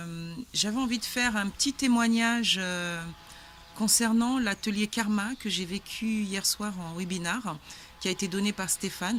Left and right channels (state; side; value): identical; both; correlation 1.00